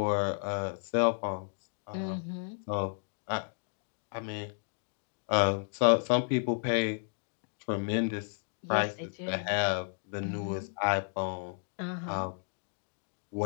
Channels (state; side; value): silent; right; digital silence